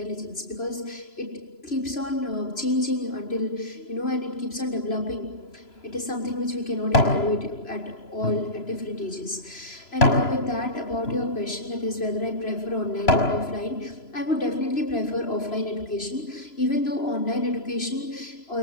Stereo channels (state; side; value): late; right; 3.0 ms